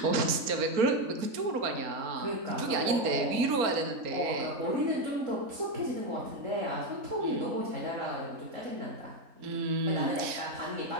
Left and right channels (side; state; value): left; late; 4.3 ms